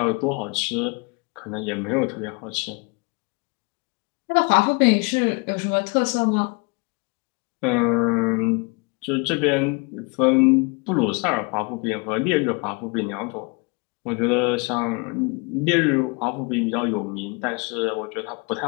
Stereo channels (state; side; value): quieter; right; 31.1 dB